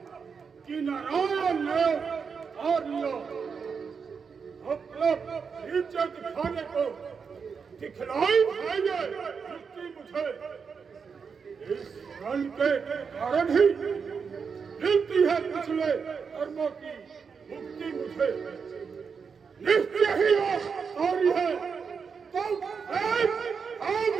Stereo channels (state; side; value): quieter; left; 5.9 dB